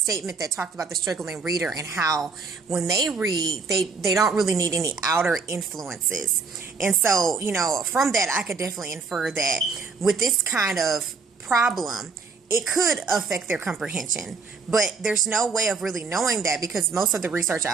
that talked about the struggling reader and how when they read, they don't really need any outer influences. And so, from that, I could definitely infer that with this kind of problem, it could affect their comprehension. But there's no way of really knowing that, because most of the research I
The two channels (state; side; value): quieter; left; 4.7 dB